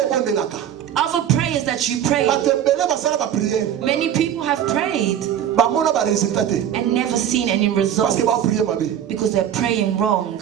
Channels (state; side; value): quieter; left; 10.0 dB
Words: Other prayers that you pray. Many people have prayed and never seen any results because they're praying wrong.